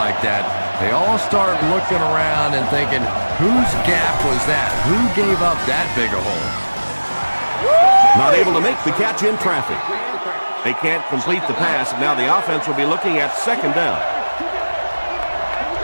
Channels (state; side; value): inverted; both; correlation -1.00